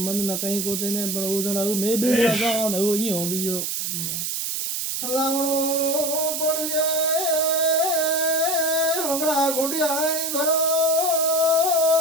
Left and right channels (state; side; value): noise; right; hiss, 2 dB below the sound